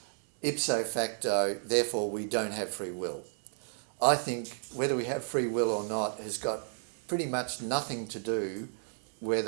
ipso facto, therefore we don't have free will. I think whether we have free will or not has got pretty much nothing to do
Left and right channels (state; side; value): silent; left; digital silence